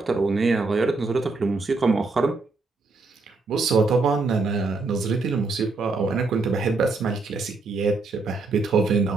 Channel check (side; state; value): left; quieter; 3.8 dB